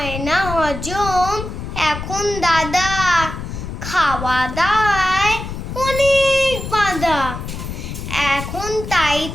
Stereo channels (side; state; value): left; noise; rumble, 7 dB below the sound